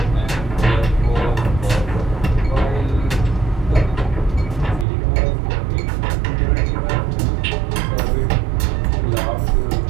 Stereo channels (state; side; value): drops out; left; at 4.9 s